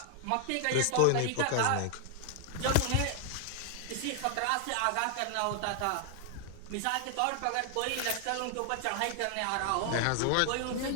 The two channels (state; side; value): different; both; correlation 0.00